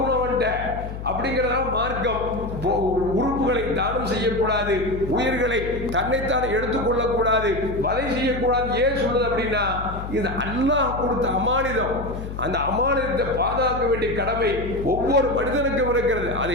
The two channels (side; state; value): left; noise; hum, 8 dB below the sound